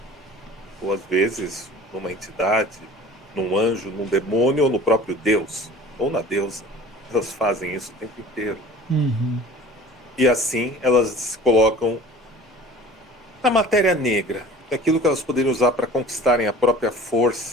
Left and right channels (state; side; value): normal; both; correlation 0.44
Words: ou às vezes numa entidade, num anjo, num demônio ou no próprio Deus, ou na deusa. Elas fazem isso o tempo inteiro. Uhum. E assim elas se colocam na matéria negra, aquilo que elas poderiam usar para conquistarem a própria